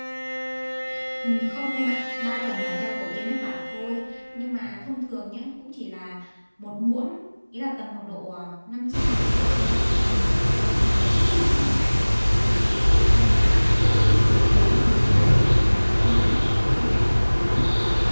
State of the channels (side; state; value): both; inverted; correlation -1.00